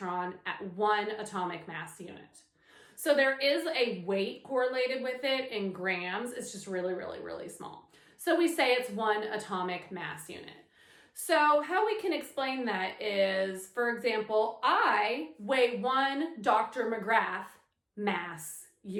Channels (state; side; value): identical; both; correlation 1.00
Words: at 1 atomic mass unit. So there is a weight correlated with it in grams. It's just really, really, really small. So we say it's 1 atomic mass unit. So how we can explain that is, for example, I weigh 1 Dr. McGrath mass